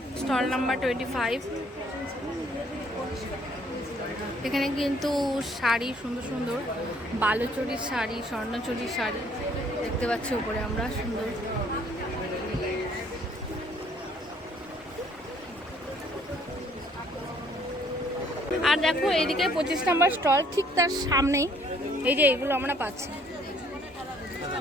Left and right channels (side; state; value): both; normal; correlation 0.62